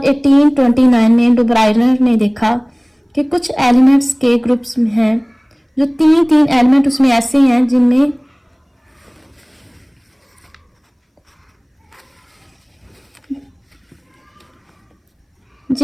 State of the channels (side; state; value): both; identical; correlation 1.00